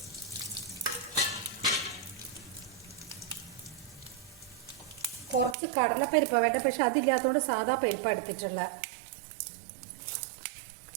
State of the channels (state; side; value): drops out; left; at 5.6 s